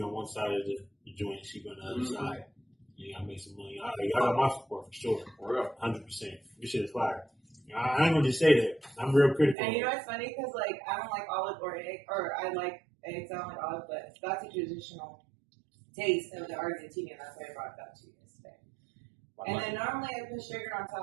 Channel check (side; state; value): left; drops out; at 9.6 s